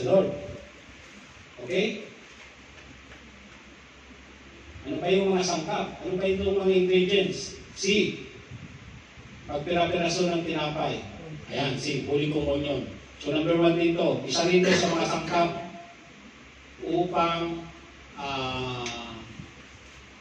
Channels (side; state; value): both; identical; correlation 1.00